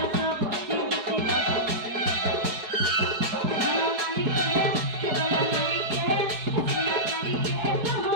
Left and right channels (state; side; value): late; left; 4.7 ms